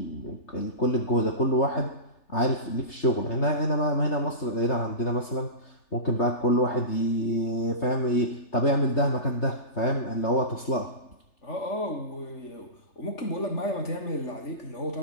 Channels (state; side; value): late; right; 3.3 ms